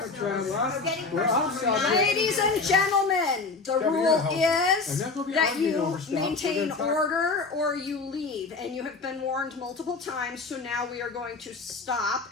personal, what? we're getting We're personal. outside. We're not- Ladies and gentlemen, the Kevin, rule you're helping. I'm is not gonna be that arguing you over stuff. We're maintain gonna talk- order or you leave, and you have been warned multiple times, so now we are going to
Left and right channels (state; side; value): quieter; right; 4.1 dB